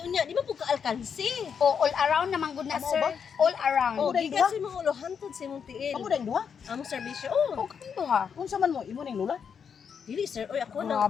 Unya, di man po ka-alkansi. O all around naman good na, Amo sir. ba? All around. Oh, dahil gikan duha? sa mga ulohantod sa imong tiil. Kamo dahil duha? Among serbisyo. Oh, O kami to, ha? Unsa man mo, imo ning lula? dili, sir. Oy, ako na.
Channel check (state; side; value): quieter; right; 6.9 dB